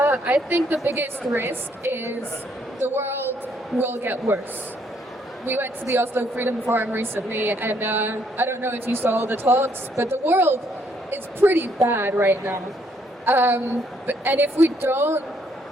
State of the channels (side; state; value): both; normal; correlation 0.70